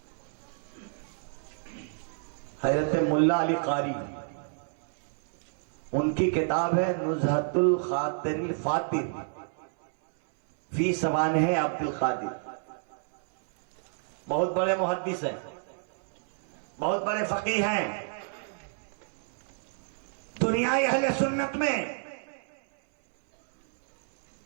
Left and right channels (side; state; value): left; silent; 58 dB below the other